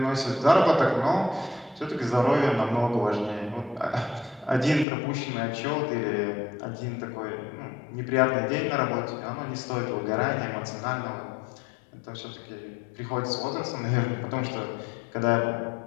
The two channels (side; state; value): right; drops out; at 4.9 s